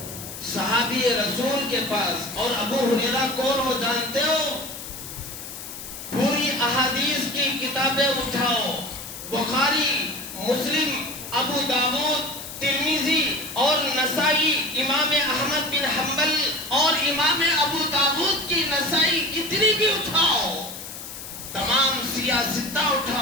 صحابی رسول کے پاس. اور ابو ہریرہ کون ہو جانتے ہو؟ پوری احادیث کی کتابیں اٹھاؤ، بخاری، مسلم، ابو داؤد، ترمذی اور نسائی، امام احمد بن حنبل اور امام ابو داؤد کی نسائی کتنی بھی اٹھاؤ، تمام سیاستہ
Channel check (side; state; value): left; noise; hiss, 11 dB below the sound